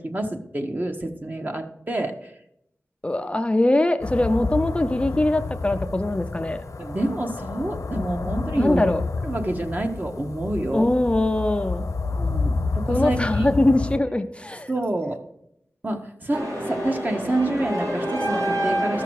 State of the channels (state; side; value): normal; both; correlation 0.94